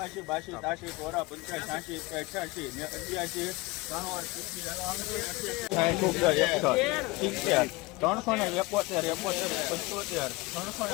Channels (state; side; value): quieter; right; 22.9 dB